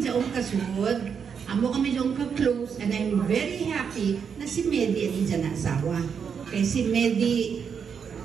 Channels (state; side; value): quieter; left; 6.8 dB